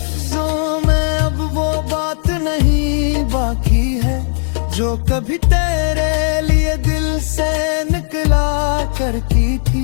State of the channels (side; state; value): right; silent; 64 dB below the other